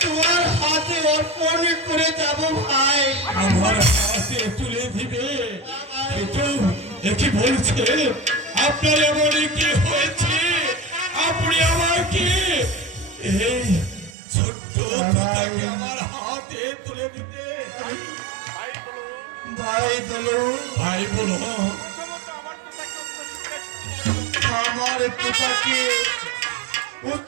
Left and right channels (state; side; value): drops out; left; at 14.2 s